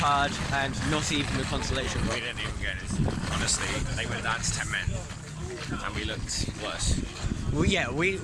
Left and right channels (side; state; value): both; identical; correlation 1.00